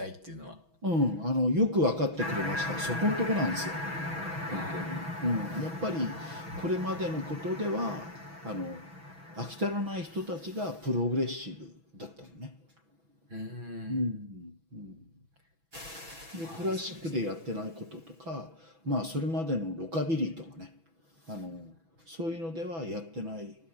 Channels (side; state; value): left; late; 6.1 ms